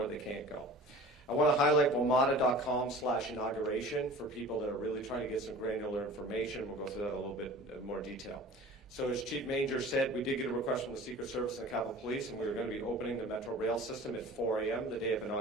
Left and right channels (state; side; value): normal; both; correlation 0.41